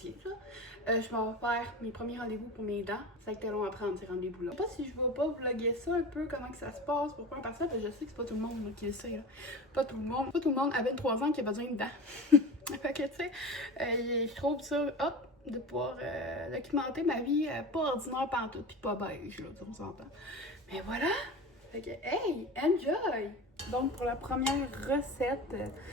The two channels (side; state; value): both; normal; correlation 0.30